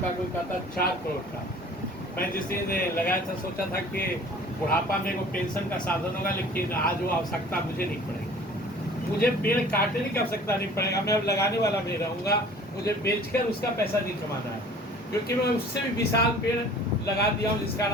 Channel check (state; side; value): normal; both; correlation 0.48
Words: का, कोई कहता है 4 करोड़ का। मैं जिस दिन लगाया था सोचा था कि बुढ़ापा में वो पेंशन का साधन होगा, लेकिन आज वो आवश्यकता मुझे नहीं पड़ेगी। मुझे पेड़ काटने की आवश्यकता नहीं पड़ेगा, मैं अब लगाने वाला भी रहूँगा। मुझे बेचकर उसका पैसा नहीं कमाना है, क्योंकि मैं उससे भी विशाल पेड़ लगा दिया हूँ, जिसका